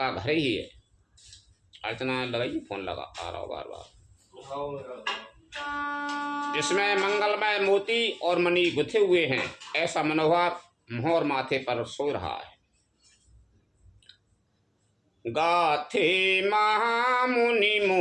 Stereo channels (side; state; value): both; identical; correlation 1.00